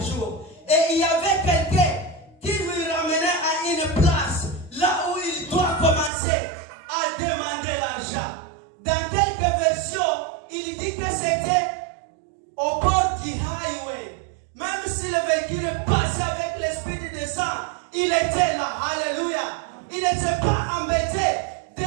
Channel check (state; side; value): drops out; left; at 6.1 s